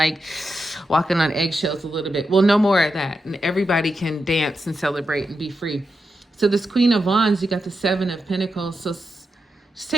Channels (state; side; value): normal; both; correlation 0.87